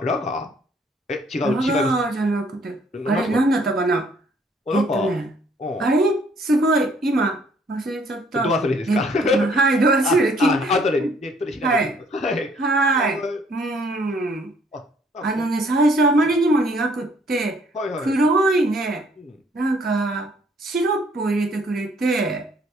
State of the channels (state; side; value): normal; both; correlation 0.63